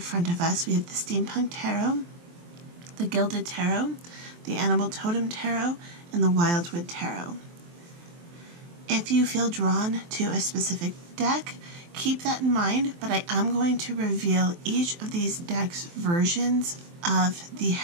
of us. We have the Steampunk Tarot, the Gilded Tarot, the Totem Tarot, and the Wildwood Tarot. If you feel drawn to a specific deck, keep that in mind, but I am going to reveal each of these decks' versions of the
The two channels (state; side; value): late; left; 23 ms